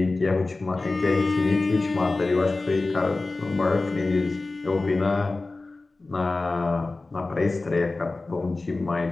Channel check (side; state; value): right; quieter; 3.3 dB